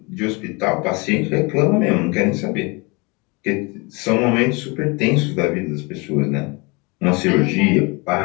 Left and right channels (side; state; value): right; quieter; 27.7 dB